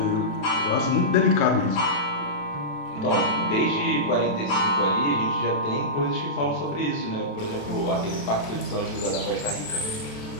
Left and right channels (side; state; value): right; late; 27 ms